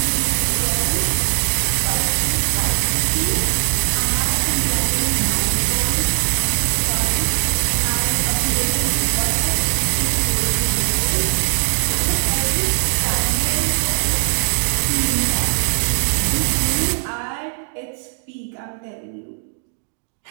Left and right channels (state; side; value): silent; left; 64 dB below the other